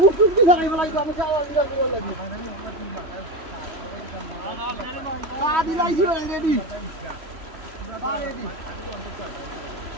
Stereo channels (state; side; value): late; left; 3.0 ms